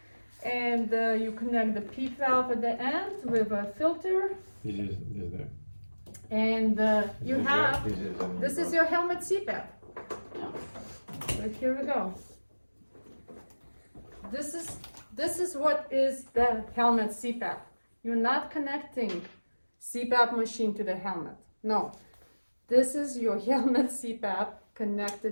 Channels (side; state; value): both; inverted; correlation -1.00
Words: and you connect the P valve at the end with a filter, This is there. and you have. This is your helmet Cpap. Yeah. So here we go. This is what is the helmet Cpap. You're not connecting Cpap machine to the helmet. No. This is your helmet Cpap